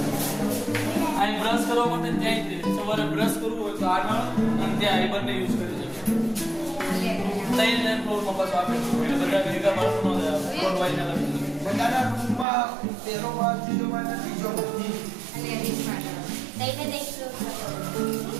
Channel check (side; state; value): left; drops out; at 12.5 s